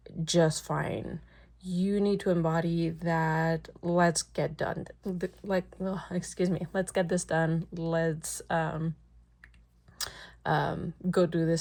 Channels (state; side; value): identical; both; correlation 1.00